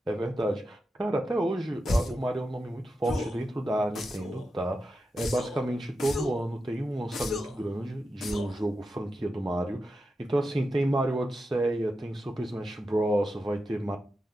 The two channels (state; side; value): normal; both; correlation 0.89